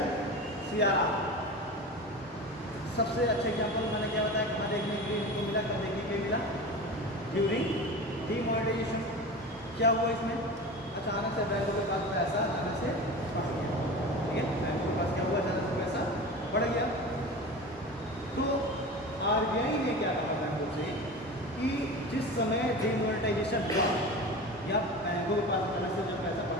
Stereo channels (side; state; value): both; normal; correlation 0.31